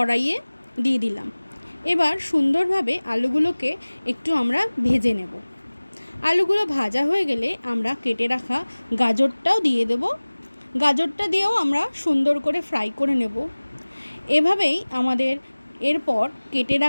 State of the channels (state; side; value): inverted; both; correlation -1.00